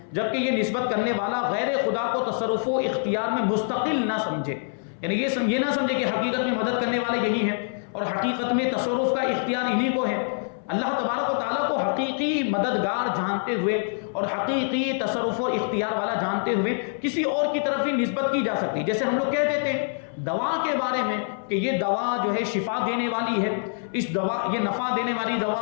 جبکہ یہ نسبت کرنے والا غیر خدا کو تصرف و اختیار میں مستقل نہ سمجھے، یعنی یہ نہ سمجھے کہ حقیقت میں مدد کرنے والے یہی ہیں اور حقیقت میں تصرف کا اختیار انہی کو ہے۔ اللہ تبارک و تعالیٰ کو حقیقی مددگار جانتے ہوئے اور حقیقی تصرف و اختیار والا جانتے ہوئے کسی اور کی طرف ہی نسبت کی جا سکتی، جیسے ہم لوگ کہہ دیتے ہیں دوا کے بارے میں کہ یہ دوا جو ہے شفا دینے والی ہے، اس دوا یہ نفع دینے والی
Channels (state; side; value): silent; right; 58 dB below the other